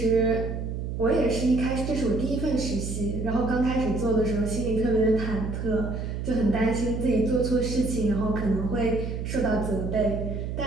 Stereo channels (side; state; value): right; noise; hum, 4 dB below the sound